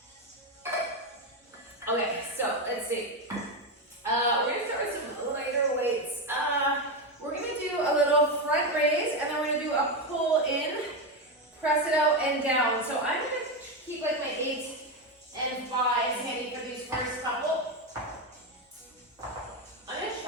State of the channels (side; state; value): both; normal; correlation 0.10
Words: Okay, so let's see. We're gonna start with some lighter weights. We're gonna do a little front raise, and then we're gonna do a pull in, press it out and down. So I'm gonna keep like my 8 and 5 handy for these first couple. I'm gonna